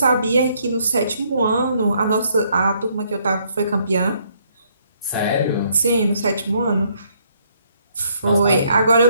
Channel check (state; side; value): inverted; both; correlation -0.69